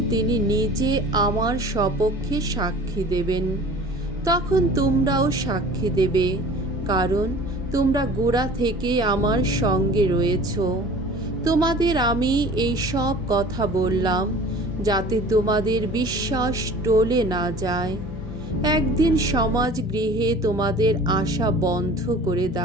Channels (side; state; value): both; normal; correlation 0.44